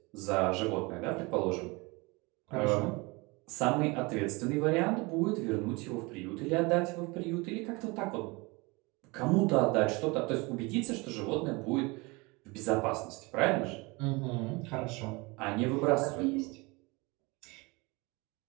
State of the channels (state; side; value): quieter; left; 26.0 dB